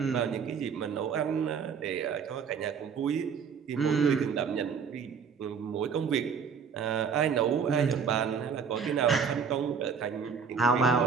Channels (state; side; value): quieter; left; 6.3 dB